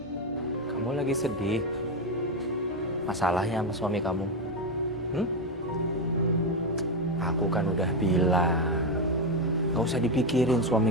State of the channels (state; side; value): normal; both; correlation 0.09